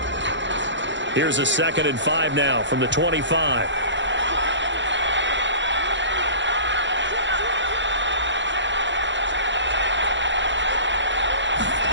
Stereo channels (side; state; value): left; late; 0.54 ms